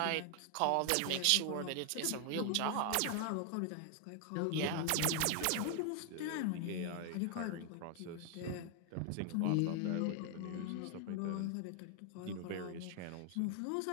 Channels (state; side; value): different; both; correlation 0.00